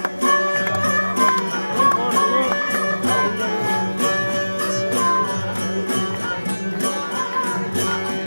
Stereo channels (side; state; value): both; inverted; correlation -1.00